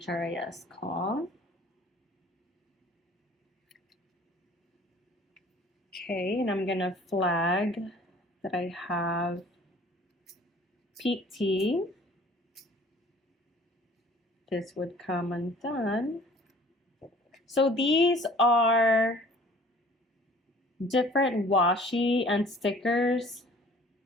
call. Okay, and I'm gonna flag that I have PT. This would come undone. So these are different washi and stickers,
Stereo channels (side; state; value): both; normal; correlation 0.51